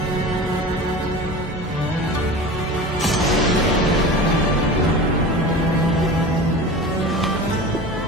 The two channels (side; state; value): both; normal; correlation 0.34